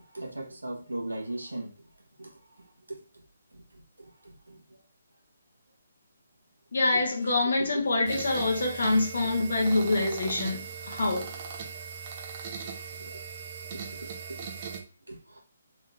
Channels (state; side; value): inverted; both; correlation -0.83